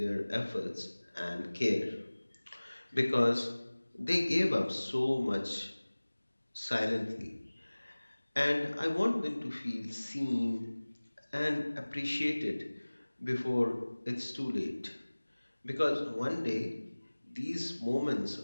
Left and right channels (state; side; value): inverted; both; correlation -1.00